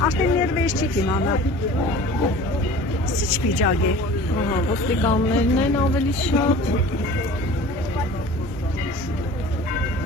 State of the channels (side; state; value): both; normal; correlation 0.42